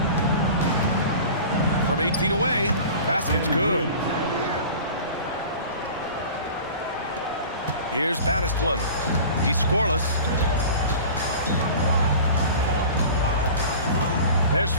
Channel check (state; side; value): inverted; both; correlation -0.39